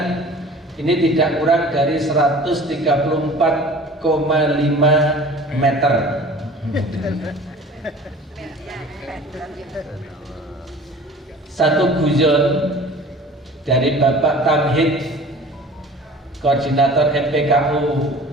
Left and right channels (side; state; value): both; normal; correlation 0.44